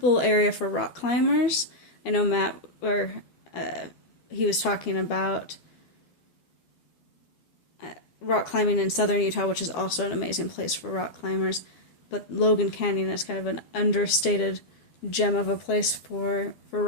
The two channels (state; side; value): late; right; 12 ms